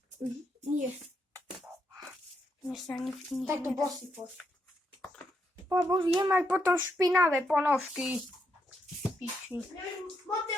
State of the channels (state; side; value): normal; both; correlation 0.79